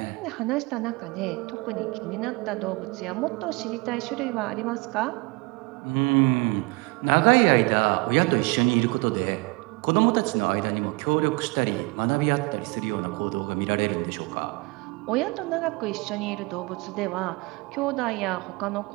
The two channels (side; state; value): left; quieter; 26.7 dB